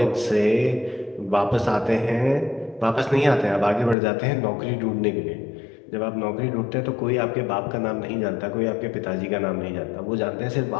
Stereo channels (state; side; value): drops out; right; at 4.0 s